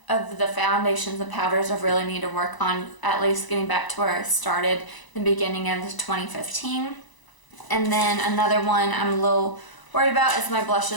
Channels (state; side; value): late; right; 1.0 ms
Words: of the foundations and powders I really need to work on, at least getting back to where I started in the beginning of 2015. And then another one I'm a little worried about is my